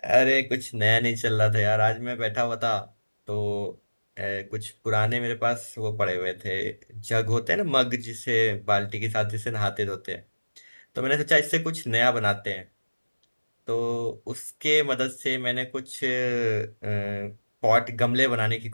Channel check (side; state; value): both; inverted; correlation -1.00